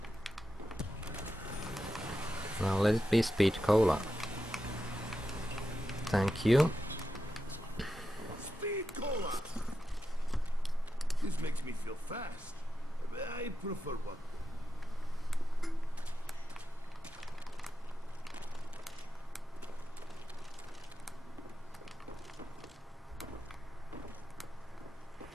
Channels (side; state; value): both; normal; correlation 0.89